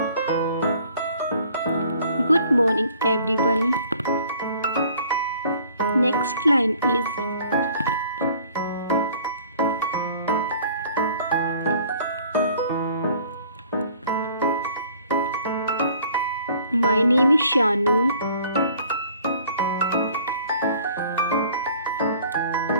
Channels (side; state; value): both; inverted; correlation -0.54